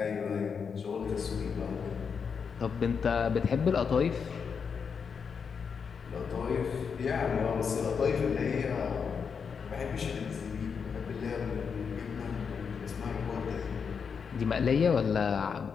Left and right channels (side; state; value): right; quieter; 6.2 dB